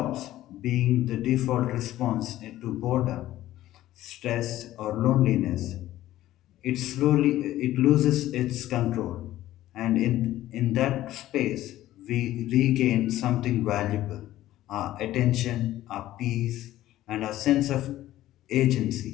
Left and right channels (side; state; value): right; quieter; 14.5 dB